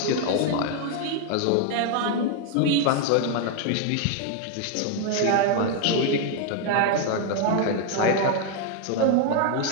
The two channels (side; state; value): both; different; correlation 0.00